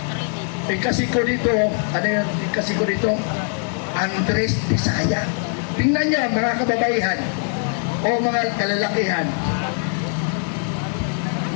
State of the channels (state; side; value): silent; right; 56 dB below the other